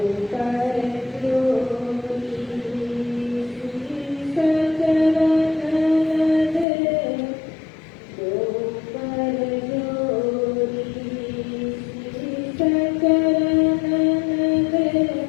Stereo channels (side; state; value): right; drops out; at 6.7 s